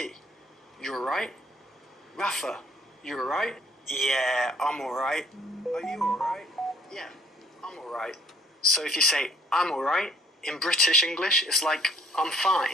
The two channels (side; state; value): both; normal; correlation 0.60